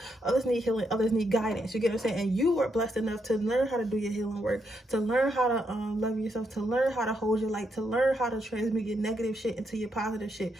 others need healing, others need guidance. You get what I'm saying? And you are blessed enough to learn how to do your healing work, to learn how to love yourself, to learn how to hold your light, to learn how to transmute your negative shit into your positive shit.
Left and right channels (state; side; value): normal; both; correlation 0.79